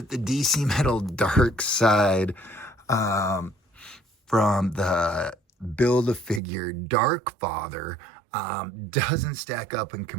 the DC Metal DARKSEID from the Build-A-Figure Darkfather doesn't stack up in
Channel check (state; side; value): drops out; left; at 6.4 s